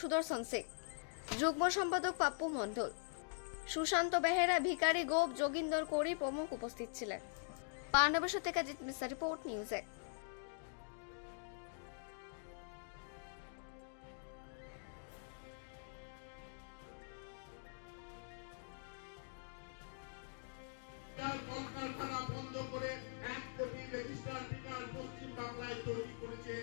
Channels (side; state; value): right; silent; digital silence